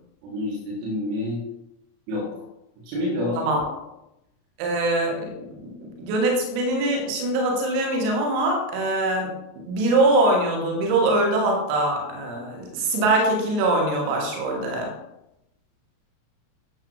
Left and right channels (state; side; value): late; left; 33 ms